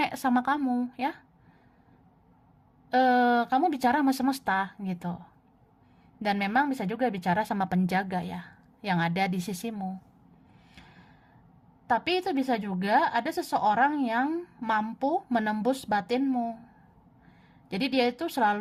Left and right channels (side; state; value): both; identical; correlation 1.00